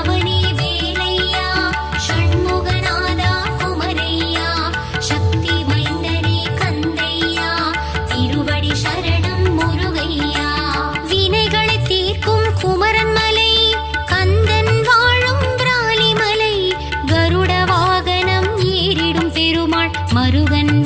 வேலையா ஷண்முகநாதா குமரையா சக்தி மைந்தனே கந்தையா திருவடி சரணம் முருகையா. வினைகளை தீர்க்கும் குமரன் மலை கந்தன் வாழும் பிராலிமலை கருட வாகனம் ஏறிடும் பெருமாள் மருகன்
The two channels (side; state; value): both; identical; correlation 1.00